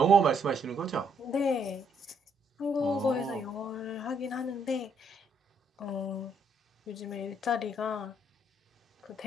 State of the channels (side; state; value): both; normal; correlation 0.70